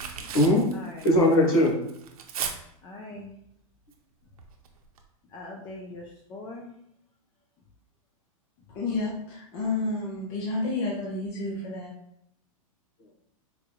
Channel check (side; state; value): both; normal; correlation 0.16